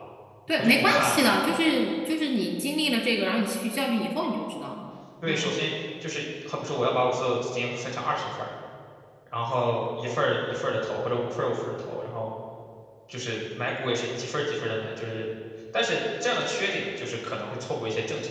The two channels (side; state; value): both; identical; correlation 1.00